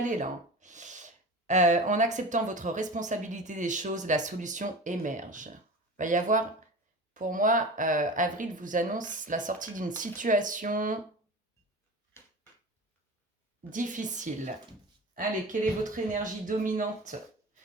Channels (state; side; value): normal; both; correlation 0.33